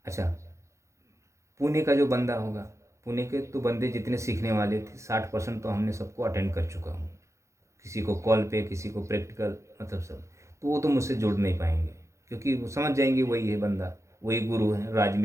अच्छा, पुणे का जो बंदा होगा, पुणे के तो बंदे जितने सीखने वाले थे 60% तो हमने सबको अटेंड कर चुका हूँ, किसी को कॉल पे, किसी को प्रैक्टिकल, मतलब सब। तो वो तो मुझसे जुड़ नहीं पाएंगे, क्योंकि वो समझ जाएंगे वही है बंदा, वही गुरु है, राज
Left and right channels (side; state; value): left; late; 0.14 ms